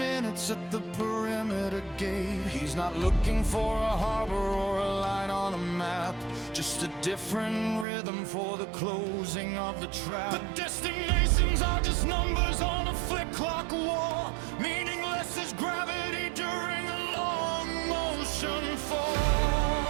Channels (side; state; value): left; drops out; at 7.9 s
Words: at the perimeter gate. He's not looking for a harbor or a line on a map, just a different rhythm for the closing of the trap. The destinations are just numbers on a flip clock wall, meaningless as gravity during a long motion fall.